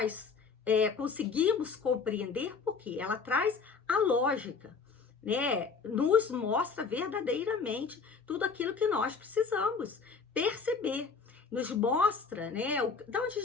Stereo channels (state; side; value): quieter; right; 5.2 dB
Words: conseguimos compreender porque ela traz a lógica, né? Nos mostra verdadeiramente tudo aquilo que nós precisamos perceber. Nos mostra, né, de onde a